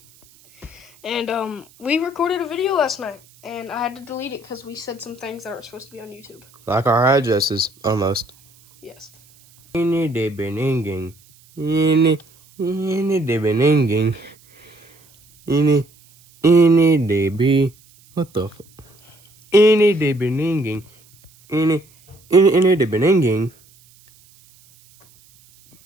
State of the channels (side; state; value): right; noise; hiss, 29 dB below the sound